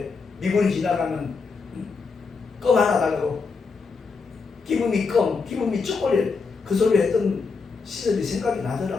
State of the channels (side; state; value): right; quieter; 4.7 dB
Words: 미군이 지나가면 껌 하나 달라고 기분이 껌, 기분이 초콜릿 그 소리 했던 시절이 생각이